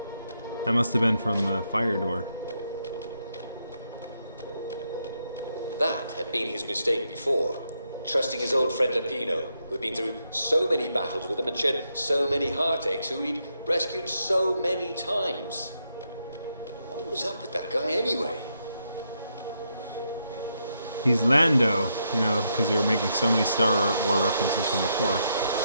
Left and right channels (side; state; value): both; inverted; correlation -0.79